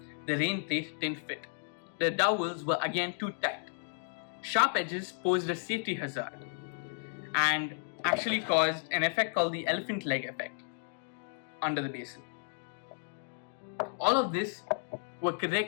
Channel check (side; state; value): right; silent; digital silence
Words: The rain plate didn't fit. The dowels were again too tight. Sharp edges posed a safety hazard and actually caused an effect called the elephant leg effect under the basin. All of this were